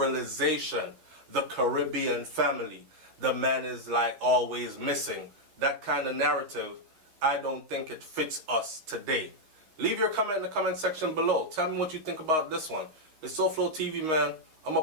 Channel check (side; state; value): left; late; 13 ms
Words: The Caribbean family, the man is like always missing. That kind of narrative, I don't think it fits us today. Leave your comment in the comment section below. Tell me what you think about this one. It's SouFLoTV, man. I'm